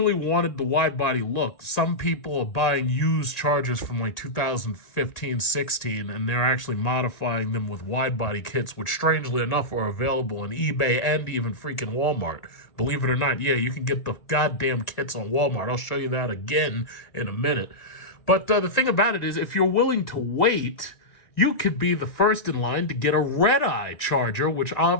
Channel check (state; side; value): late; right; 1.8 ms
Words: wanted the wide body look, some people are buying used Chargers from like 2015, 16, and they're actually modifying them with wide body kits, which strangely enough are available on eBay and even freaking Walmart. Believe it or not, yeah, you can get the goddamn kits on Walmart. I'll show you that again in a minute. But the thing about it is, if you're willing to wait, you could be the first in line to get a Redeye Charger, which